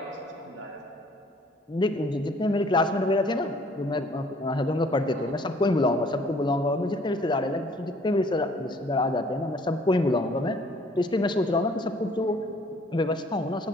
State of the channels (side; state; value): both; normal; correlation 0.58